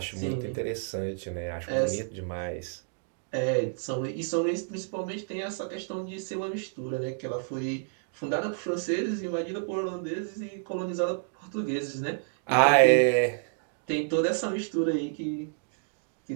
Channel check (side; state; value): left; silent; digital silence